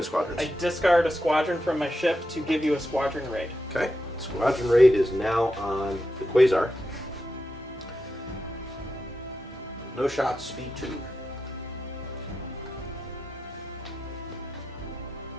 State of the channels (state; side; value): normal; both; correlation 0.87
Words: squadrons. I discard a squadron from my ship to give you a squadron raid. Okay. Squadron raid is now on the Quasar. No shots, speed 2.